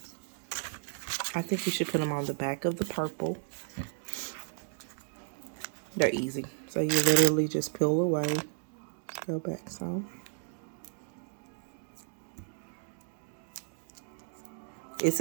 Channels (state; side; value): silent; left; digital silence